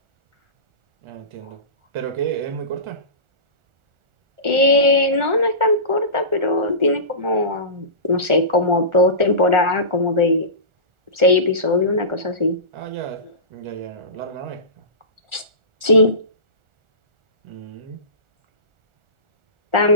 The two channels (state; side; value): late; left; 1.4 ms